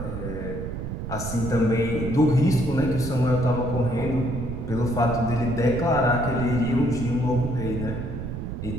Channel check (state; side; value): noise; right; rumble, 6 dB below the sound